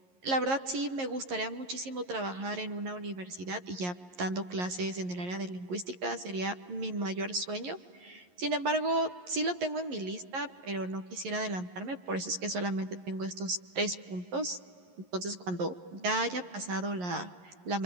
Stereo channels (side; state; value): left; late; 11 ms